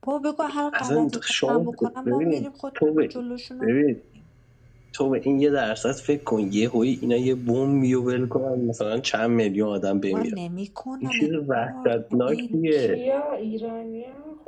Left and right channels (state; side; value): identical; both; correlation 1.00